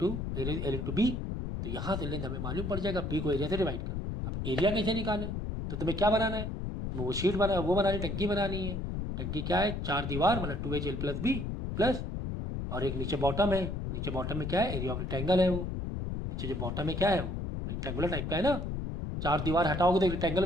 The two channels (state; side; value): noise; left; rumble, 3 dB below the sound